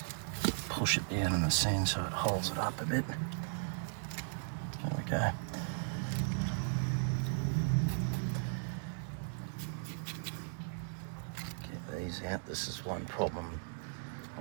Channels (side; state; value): left; silent; digital silence